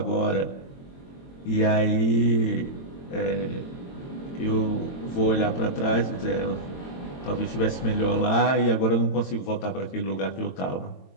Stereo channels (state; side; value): late; right; 22 ms